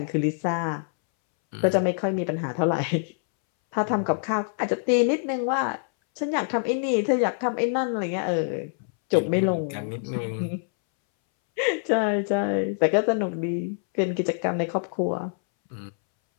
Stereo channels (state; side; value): silent; right; 62 dB below the other